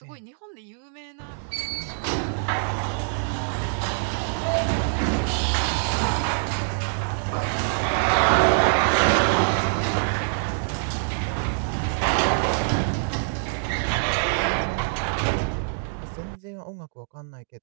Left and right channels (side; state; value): left; silent; digital silence